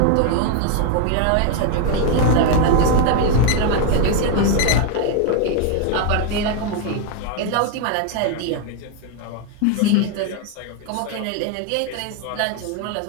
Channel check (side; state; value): both; different; correlation 0.01